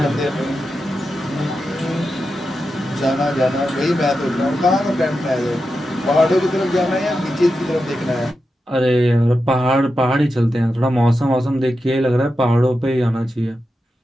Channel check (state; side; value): normal; both; correlation 0.89